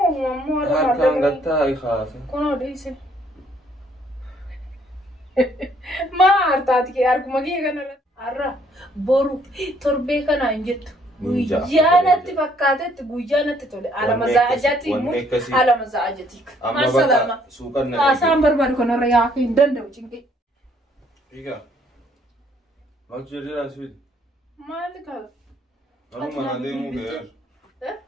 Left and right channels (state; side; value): normal; both; correlation 0.65